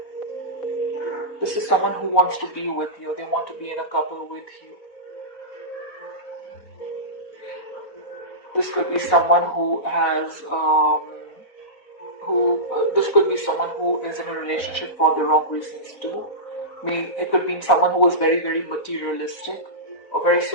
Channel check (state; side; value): late; right; 4.3 ms